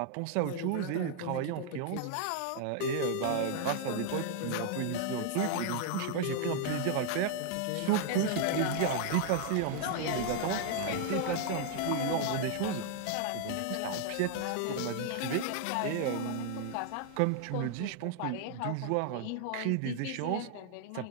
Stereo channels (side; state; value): both; different; correlation 0.00